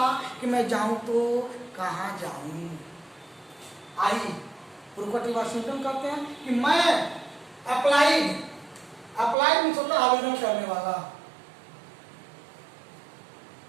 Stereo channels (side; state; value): left; drops out; at 9.3 s